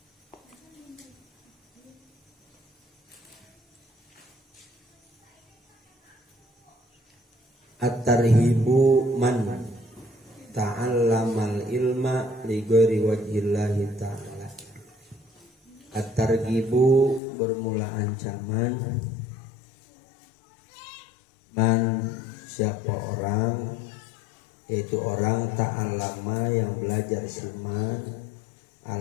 At-tarhibu man ta'allamal ilma li ghairi wajhillahi ta'ala. At-targhibu bermula ancaman, man siapa orang, yaitu orang ta'allama yang belajar siman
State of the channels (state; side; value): drops out; right; at 17.2 s